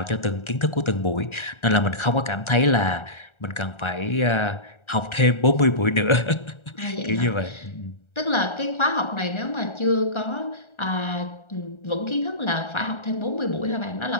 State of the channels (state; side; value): late; right; 1.4 ms